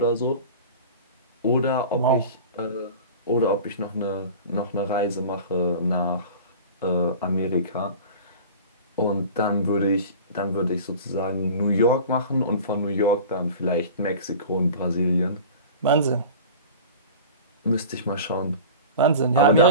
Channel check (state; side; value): inverted; both; correlation -0.37